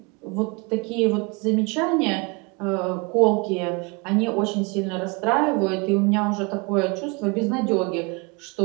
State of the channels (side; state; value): left; quieter; 29.1 dB